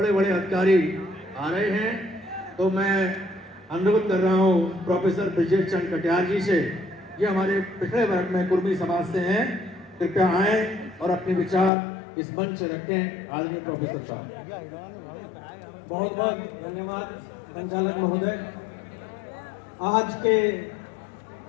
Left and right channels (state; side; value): drops out; right; at 11.7 s